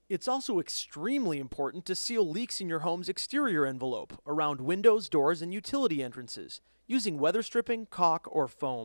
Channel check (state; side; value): inverted; both; correlation -1.00